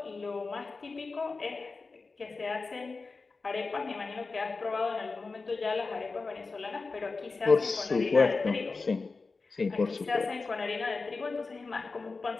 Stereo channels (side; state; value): right; quieter; 4.1 dB